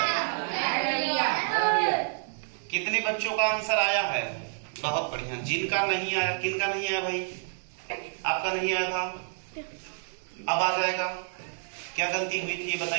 कितने बच्चों का आंसर आया है? बहुत बढ़िया। जिनका नहीं आया, किनका नहीं आया भाई? आपका नहीं आया था, अब आ जाएगा। क्या गलती हुई थी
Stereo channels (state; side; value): silent; left; digital silence